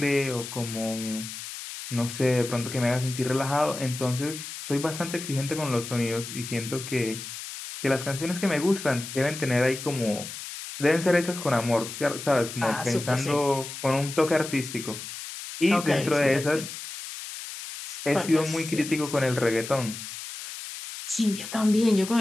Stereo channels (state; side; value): noise; left; hiss, 10 dB below the sound